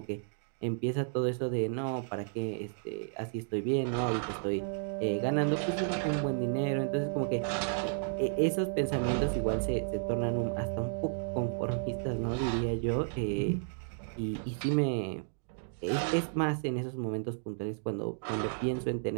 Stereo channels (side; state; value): left; silent; digital silence